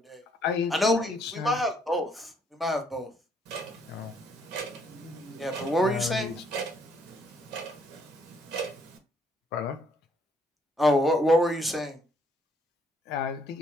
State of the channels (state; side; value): normal; both; correlation 0.68